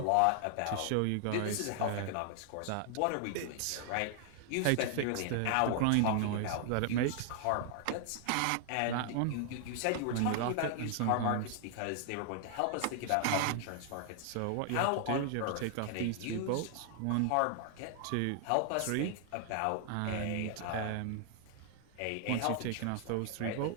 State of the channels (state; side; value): different; both; correlation 0.00